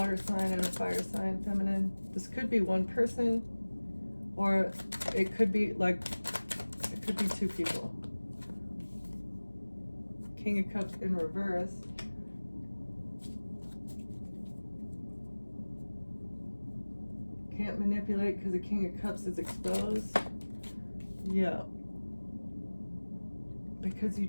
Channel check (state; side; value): inverted; both; correlation -1.00